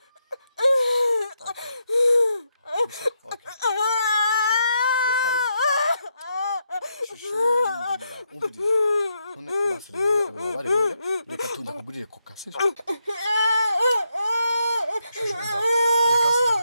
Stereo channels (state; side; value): inverted; both; correlation -0.81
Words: reka tujya kugurira koka sibyo